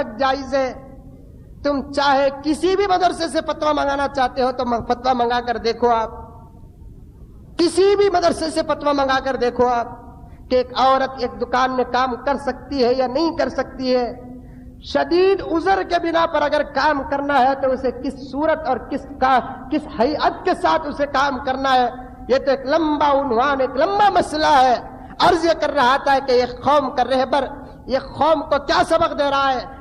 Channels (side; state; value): both; identical; correlation 1.00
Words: جائز ہے؟ تم چاہے کسی بھی مدرسے سے فتویٰ منگانا چاہتے ہو تو فتویٰ منگا کر دیکھو, آپ کسی بھی مدرسے سے فتویٰ منگا کر دیکھو آپ کہ ایک عورت ایک دکان میں کام کر سکتی ہے یا نہیں کر سکتی ہے. شدید عذر کے بنا پر اگر کام کرنا ہے تو اسے کس صورت اور کس ہیئت کے ساتھ اسے کام کرنا ہے, یہ تو ایک لمبا عنوان, ایک لمبا مسئلہ ہے. عرض یہ کر رہا تھا کہ یہ قوم کا رہبر یہ قوم کو کیا سبق دے رہا ہے,